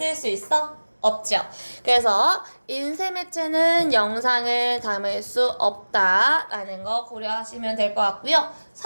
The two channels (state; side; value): inverted; both; correlation -1.00